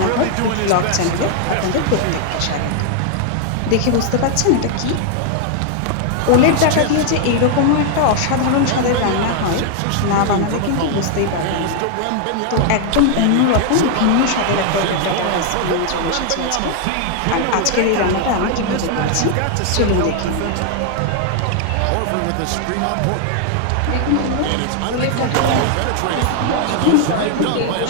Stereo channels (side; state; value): both; different; correlation 0.00